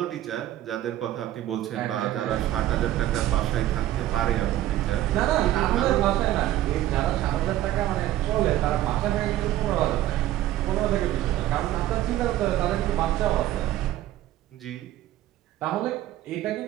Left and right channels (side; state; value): left; quieter; 13.8 dB